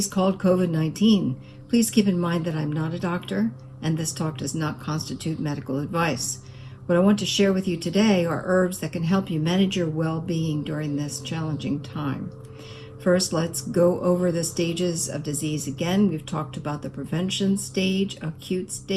called COVID-19. Please keep in mind that I'm not a doctor, and this talk does not constitute medical advice. What I want to share with you today are herbs that can help you manage your well-being during this challenging time. First, let's go over the stages of disease again. We've talked about the prevention stage, acute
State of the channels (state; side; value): identical; both; correlation 1.00